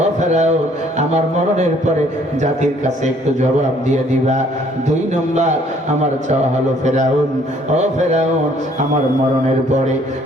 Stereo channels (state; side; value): normal; both; correlation 0.61